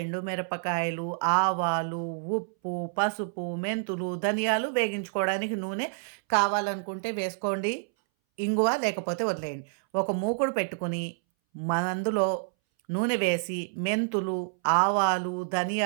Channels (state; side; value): silent; left; 59 dB below the other